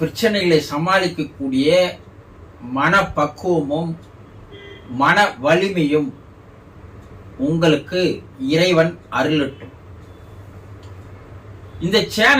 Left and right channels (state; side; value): identical; both; correlation 1.00